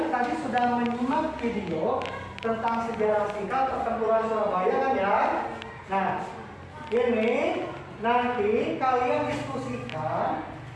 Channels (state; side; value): identical; both; correlation 1.00